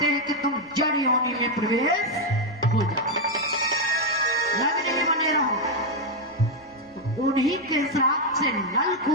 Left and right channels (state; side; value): normal; both; correlation 0.03